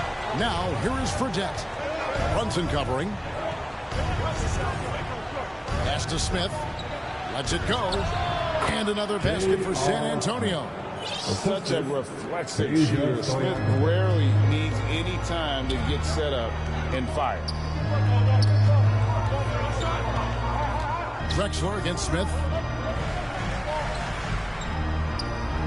Now, here is Fredette. Brunson covering. Pass to Smith. Lets it go. And another basket for San Antonio. Such a reflexive shooter. Smith rarely needs any time to get set up and fire. Drexler against Smith.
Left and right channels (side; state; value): both; identical; correlation 1.00